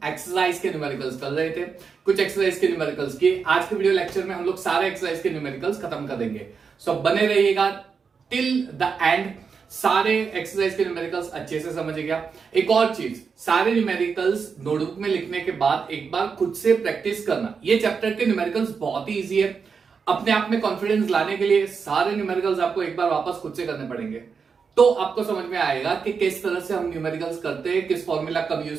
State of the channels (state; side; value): quieter; left; 5.7 dB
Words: exercise के numericals कर रहे थे। कुछ एक्सरसाइज के न्यूमेरिकल्स किए। आज के वीडियो लेक्चर में हम लोग सारे एक्सरसाइज के न्यूमेरिकल्स खत्म कर देंगे। सो बने रहिएगा टिल द एंड। सारे एक्सरसाइज के न्यूमेरिकल्स अच्छे से समझ गया। एक और चीज, सारे न्यूमेरिकल्स नोटबुक में लिखने के बाद एक बार खुद से प्रैक्टिस करना। ये चैप्टर के न्यूमेरिकल्स बहुत ही इजी है। अपने आप में कॉन्फिडेंस लाने के लिए सारे न्यूमेरिकल्स आपको एक बार वापस खुद से करने पड़ेंगे, तो आपको समझ में आएगा कि किस तरह से हम न्यूमेरिकल्स करते हैं, किस फॉर्मूला कब